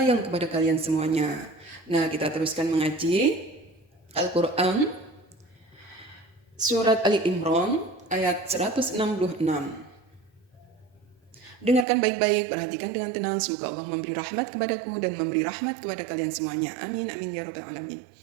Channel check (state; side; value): drops out; left; at 11.9 s